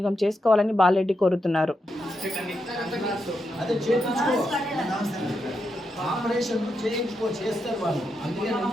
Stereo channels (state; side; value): normal; both; correlation 0.84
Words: చేసుకోవాలని బాలరెడ్డి కోరుతున్నారు. అదే చేయించుకో, ఆపరేషన్ చేయించుకో, చేస్తారు వాళ్ళు. అందుకే